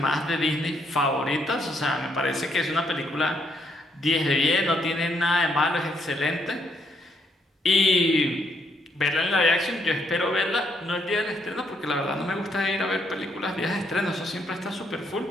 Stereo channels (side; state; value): both; normal; correlation 0.73